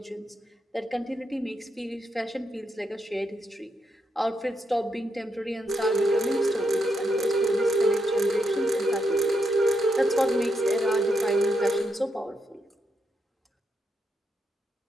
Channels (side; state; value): both; normal; correlation 0.81